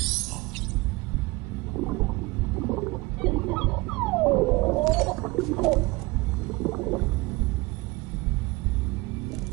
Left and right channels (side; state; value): left; quieter; 23.0 dB